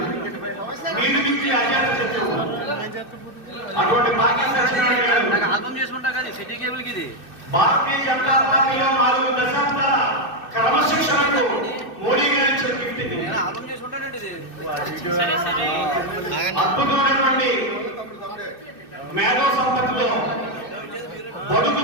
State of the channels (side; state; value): right; late; 2.6 ms